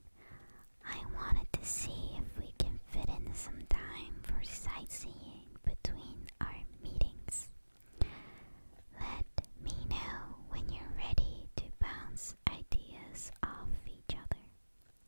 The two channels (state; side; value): inverted; both; correlation -1.00